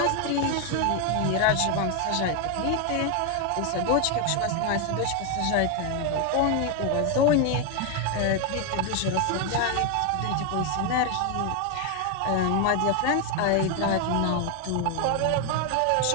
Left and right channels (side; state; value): both; different; correlation 0.01